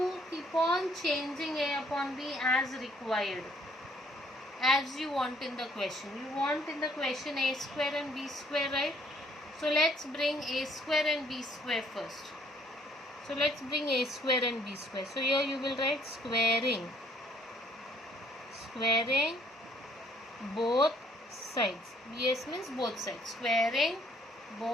keep on changing a upon b as required, as you want in the question. You want in the question a square and b square, right? So let's bring a square and b square first. So let's bring a square and b square. So here you will write squaring both sides. BS means both sides. Squaring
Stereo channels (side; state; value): both; normal; correlation 0.62